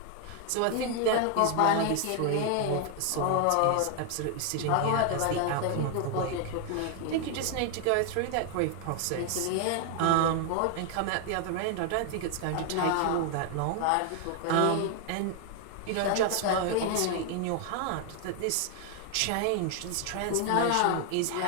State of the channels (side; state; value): both; different; correlation 0.00